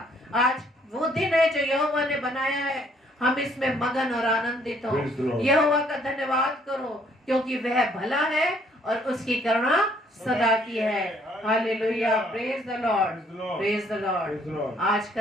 आज वो दिन है जो यहोवा ने बनाया है, हम इसमें मगन और आनंदित हो। यहोवा का धन्यवाद करो, क्योंकि वह भला है और उसकी करुणा सदा की है। Hallelujah, praise the Lord, praise the Lord. आज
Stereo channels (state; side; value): normal; both; correlation 0.65